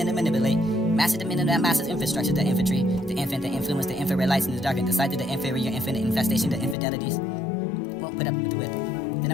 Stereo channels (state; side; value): drops out; right; at 6.8 s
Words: to manipulate. Master the men and that masses infrastructure. The infantry. The infant, the influence, the infrared lights in the darkened. The sight of the inferior infinite infestation. The infidelities. Won't put up with the width. The